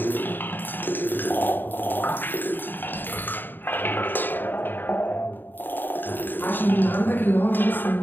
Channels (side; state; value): right; late; 0.093 ms